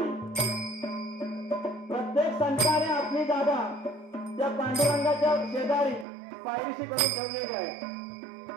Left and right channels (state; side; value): drops out; left; at 6.1 s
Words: प्रत्येक संताने आपली जागा त्या पांडुरंगाच्या शेजारी पायरीशी करून ठेवलेली आहे.